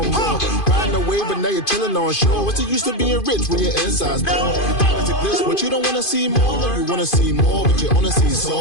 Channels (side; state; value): right; late; 2.5 ms